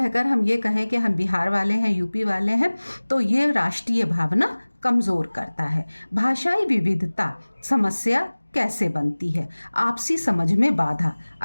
हम ये कहें कि हम बिहार वाले हैं, यूपी वाले हैं, तो ये राष्ट्रीय भावना कमज़ोर करता है। भाषाई विविधता समस्या कैसे बनती है? आपसी समझ में बाधा।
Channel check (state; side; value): inverted; both; correlation -1.00